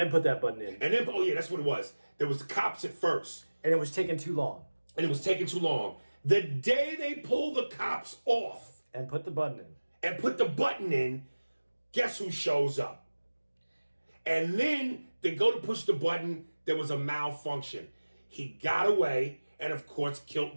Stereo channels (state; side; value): inverted; both; correlation -1.00